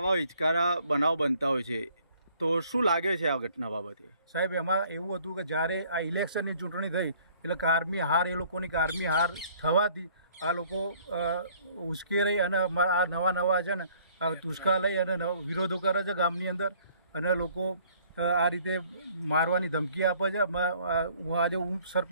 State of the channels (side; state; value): both; inverted; correlation -0.59